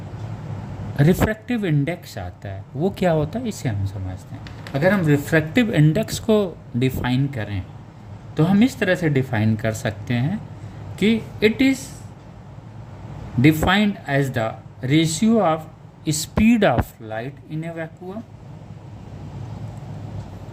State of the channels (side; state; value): both; identical; correlation 1.00